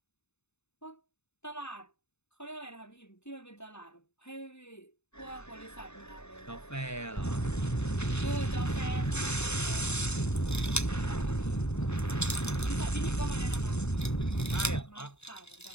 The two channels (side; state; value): right; late; 0.81 ms